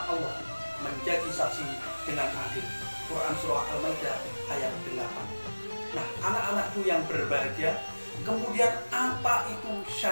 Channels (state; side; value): inverted; both; correlation -1.00